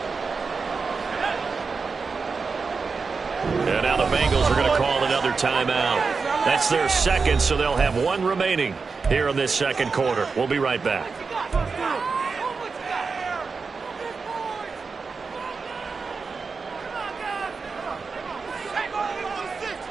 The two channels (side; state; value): left; quieter; 4.8 dB